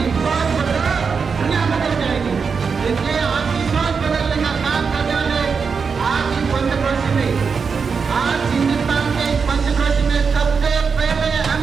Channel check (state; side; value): quieter; left; 5.5 dB